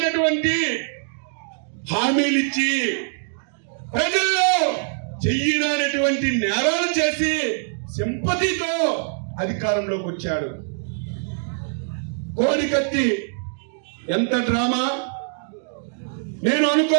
హామీలిచ్చి ప్రజల్లో చెయ్యనటువంటి నేరాలు చేసి సింపతితో అధికారంలోకి వచ్చాడు. కోడికత్తి ఎంత డ్రామా నేను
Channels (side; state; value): left; silent; digital silence